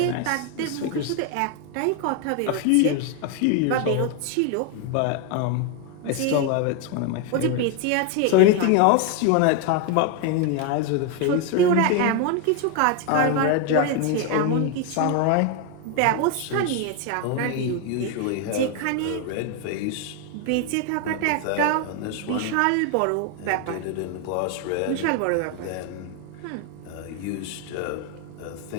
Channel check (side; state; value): both; different; correlation 0.01